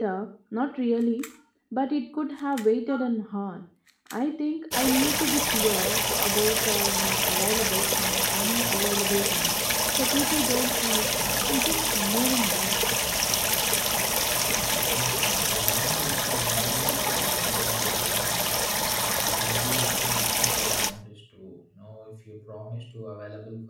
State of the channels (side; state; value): both; identical; correlation 1.00